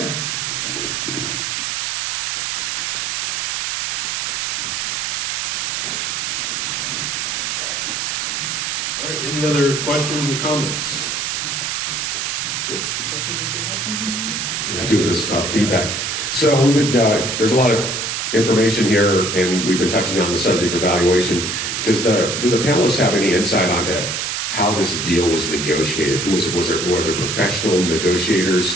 All right, any other questions or comments? I do this feedback. So we've been, there's a lot of information here, and we've been touching on the subject of valuation. Do the panelists have any insight onto how this deal was negotiated? Were there professional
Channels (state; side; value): noise; right; hiss, 1 dB below the sound